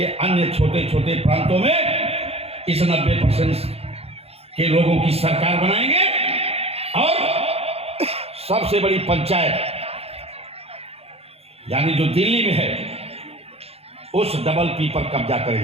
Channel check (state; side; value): late; left; 0.29 ms